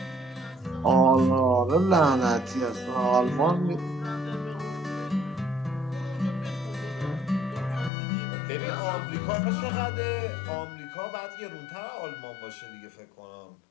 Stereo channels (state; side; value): drops out; right; at 7.9 s